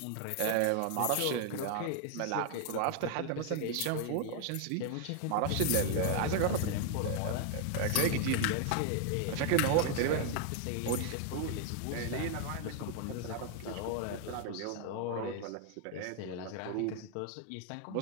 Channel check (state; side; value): different; both; correlation 0.00